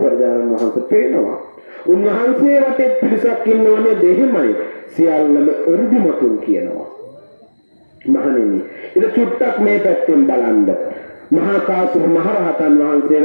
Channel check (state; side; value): inverted; both; correlation -1.00